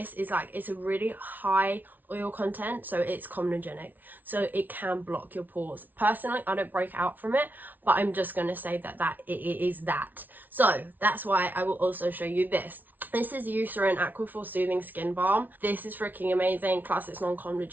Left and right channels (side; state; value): left; late; 0.083 ms